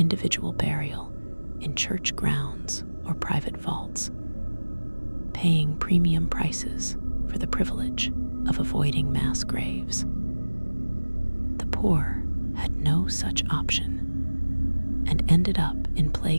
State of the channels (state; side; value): inverted; both; correlation -1.00